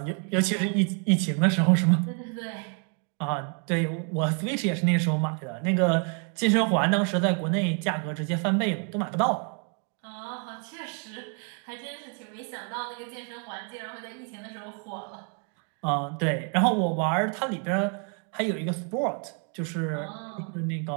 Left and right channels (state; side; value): quieter; left; 38.7 dB